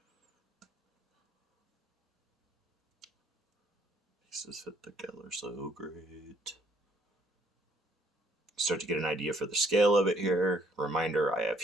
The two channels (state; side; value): normal; both; correlation 0.63